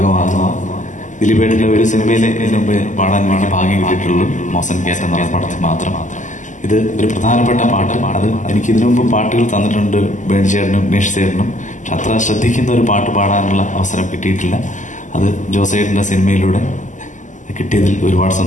ദിലീപേട്ടൻ്റെ ഒരു സിനിമയിൽ ഇതിനു മുമ്പ് പാടാൻ വേണ്ടി ഭാഗ്യം കിട്ടിയിട്ടുള്ളൂ, മോസൻ കേറ്റ് എന്നുള്ള പടത്തിൽ മാത്രം. ഇത് ഒരു പ്രധാനപ്പെട്ട പാട്ട്. അത് എനിക്ക് ഇതിനു മുമ്പ് പാട്ടുകൾ തന്നിട്ടുണ്ട് ബേണി ചേട്ടനും ഉമേഷ് ചേട്ടനും. പക്ഷെ അത്ര ശ്രദ്ധിക്കുന്ന ഒരു പാട്ട് പാടാനുള്ള അവസരം കിട്ടിയിട്ടില്ല. അത് ജോസേട്ടൻ്റെ സിനിമയിലൂടെ കിട്ടിയതിൽ ഒരുപാട്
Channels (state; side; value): late; right; 0.37 ms